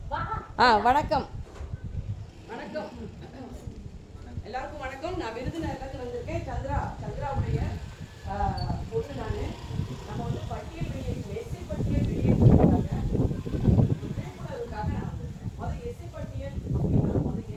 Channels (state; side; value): identical; both; correlation 1.00